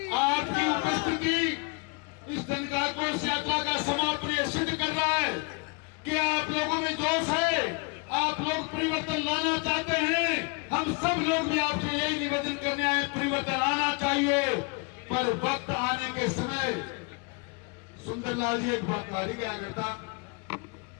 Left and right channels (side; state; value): right; quieter; 31.0 dB